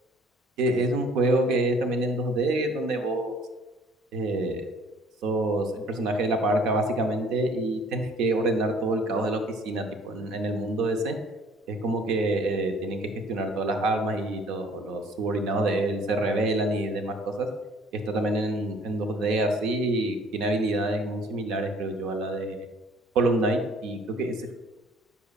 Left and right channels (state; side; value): normal; both; correlation 0.55